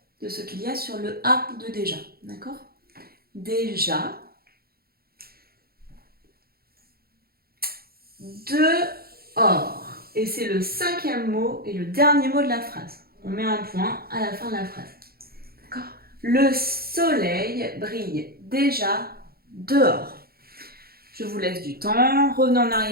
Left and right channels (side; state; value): left; late; 0.44 ms